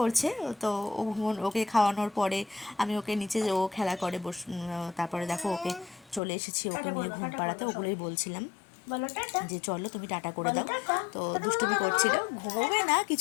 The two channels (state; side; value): drops out; right; at 6.2 s